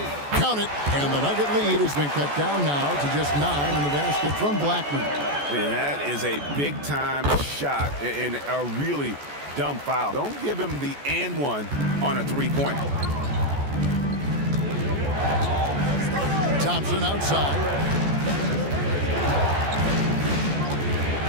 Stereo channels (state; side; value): late; left; 14 ms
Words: Count it, and the Nugget lead has been cut down now to just 9 in the basket from Blackman. And that is a big-time shot and a really dumb foul. Don't give him the and one on a three-pointer. Thompson outside.